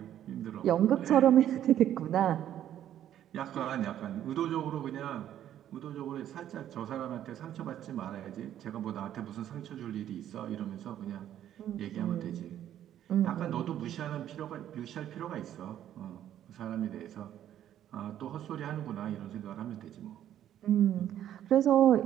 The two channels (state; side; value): quieter; left; 11.2 dB